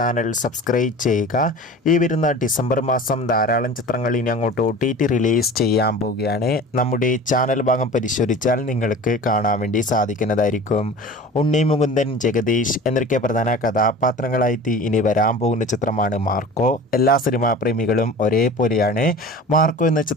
സബ്സ്ക്രൈബ് ചെയ്യുക. ഈ വരുന്ന ഡിസംബർ മാസം ധാരാളം ചിത്രങ്ങൾ ഇനി അങ്ങോട്ട് OTT റിലീസ് ചെയ്യാൻ പോവുകയാണ്. നമ്മുടെ ചാനൽ ഭാഗം പരിശോധിച്ചാൽ നിങ്ങൾക്ക് കാണാൻ വേണ്ടി സാധിക്കുന്നതായിരിക്കും. ഉണ്ണി മുകുന്ദൻ, ജഗദീഷ് എന്നൊക്കെ പ്രധാന കഥാപാത്രങ്ങളായിട്ട് ഇനി വരാൻ പോകുന്ന ചിത്രമാണ് മാർക്കോ. എല്ലാ സിനിമാ പ്രേമികളും ഒരേപോലെയാണ് മാർക്കോ എന്ന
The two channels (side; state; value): both; normal; correlation 0.38